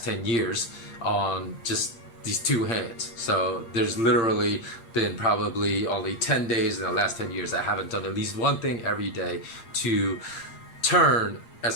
years on just these two hands. So there's literally been probably only 10 days in the last 10 years that I haven't done at least one thing every day to turn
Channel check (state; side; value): late; right; 8.7 ms